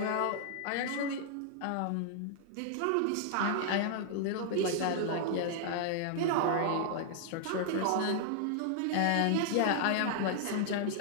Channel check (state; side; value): different; both; correlation -0.01